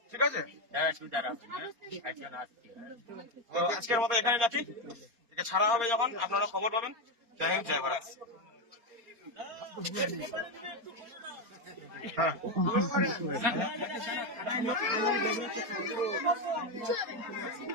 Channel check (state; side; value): late; left; 4.2 ms